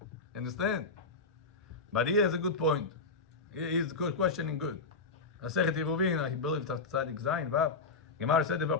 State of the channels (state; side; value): quieter; right; 4.0 dB